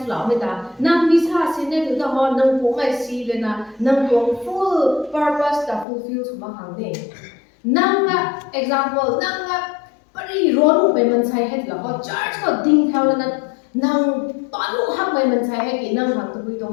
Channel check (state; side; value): drops out; right; at 5.9 s